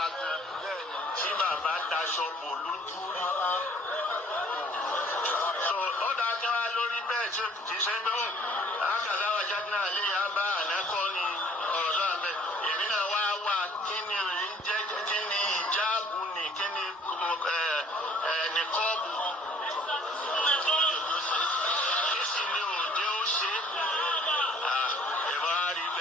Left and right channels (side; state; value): both; normal; correlation 0.57